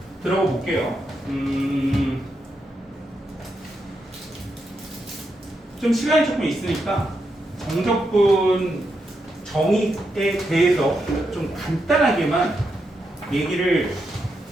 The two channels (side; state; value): both; normal; correlation 0.83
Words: 들어가 볼게요. 좀 시간이 조금 있으니까 정적분 정의에 대해서 좀 간단하게만 얘기를